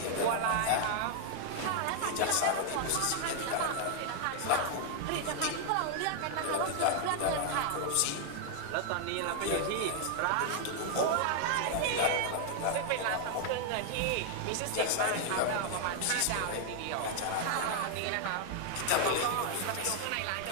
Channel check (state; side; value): different; both; correlation 0.00